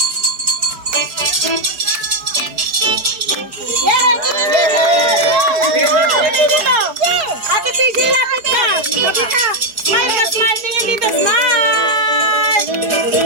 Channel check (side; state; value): left; late; 4.8 ms